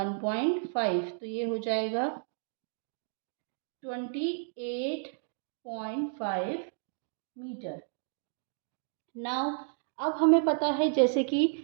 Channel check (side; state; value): left; silent; digital silence